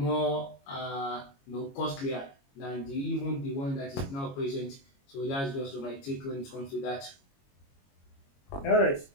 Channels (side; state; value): right; late; 22 ms